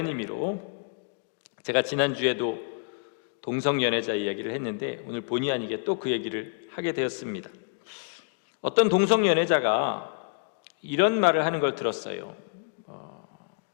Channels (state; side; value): quieter; right; 37.3 dB